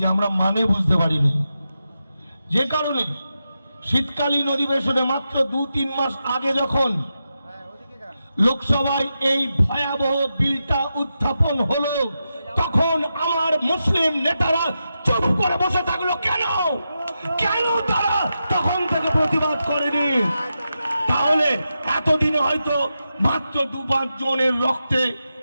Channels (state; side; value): inverted; both; correlation -0.88